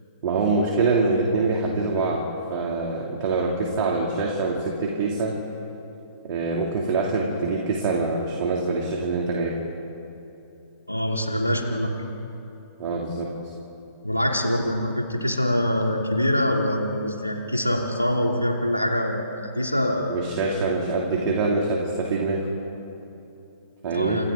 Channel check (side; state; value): both; inverted; correlation -0.60